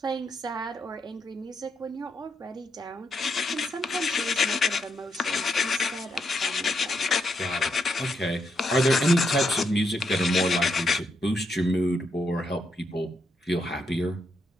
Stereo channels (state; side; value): normal; both; correlation 0.79